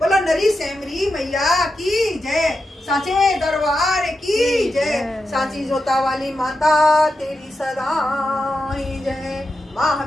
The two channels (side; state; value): both; normal; correlation 0.88